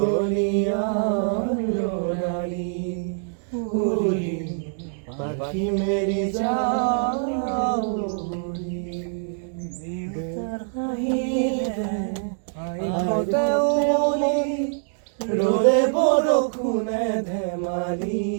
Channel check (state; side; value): silent; left; digital silence